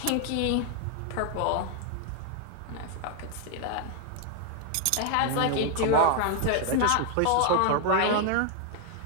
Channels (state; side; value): different; both; correlation 0.00